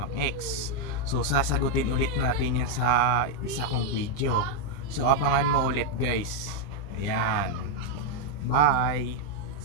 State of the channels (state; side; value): late; right; 20 ms